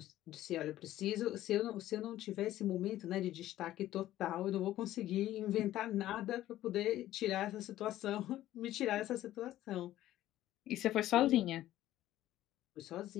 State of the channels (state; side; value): quieter; right; 14.0 dB